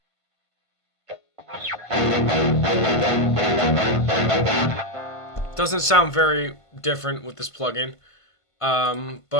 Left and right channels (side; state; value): right; late; 1.5 ms